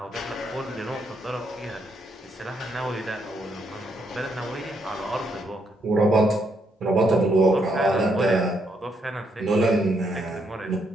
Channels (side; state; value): both; normal; correlation 0.75